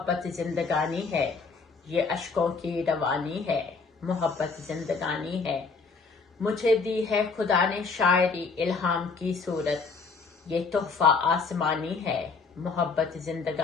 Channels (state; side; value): quieter; right; 4.6 dB